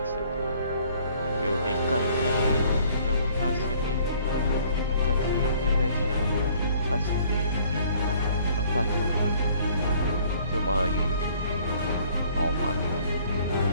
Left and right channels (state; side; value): inverted; both; correlation -0.58